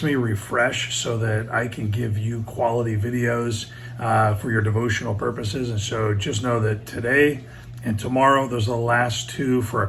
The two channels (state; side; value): identical; both; correlation 1.00